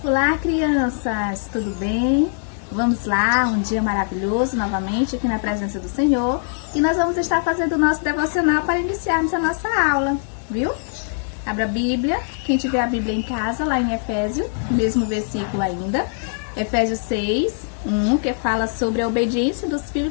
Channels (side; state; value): right; silent; digital silence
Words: Olá, crianças! Tudo bem? Vamos lá, um dia maravilhoso novamente aqui na presença do Senhor e nós vamos estar fazendo o nosso devocional para iniciarmos a nossa aula, viu? Abra a Bíblia, quem tiver a Bíblia em casa, lá em Efésios, mesmo versículo ainda, Efésios 6, 1, que fala sobre a obediência dos